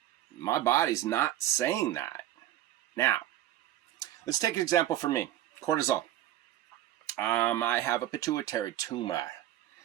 my body's not saying that. Now, let's take an example for me. Cortisol. I have a pituitary tumor.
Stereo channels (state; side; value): quieter; left; 13.2 dB